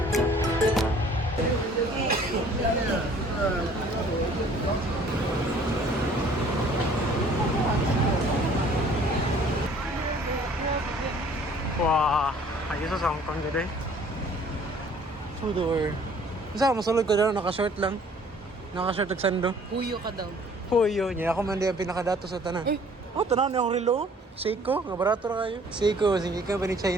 Wah, ayos sa Hong Kong gede. Sudor. Isa masulod ko daw naka-short lang. Naka-short og sando. Huyo ka daw. Puyo niya ako man di ang pinakadato sa tanan. Oh, tanaw niya akong relo. Seiko, nga barato ra kayo. Seiko, sige ka ba ni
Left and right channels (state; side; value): normal; both; correlation 0.55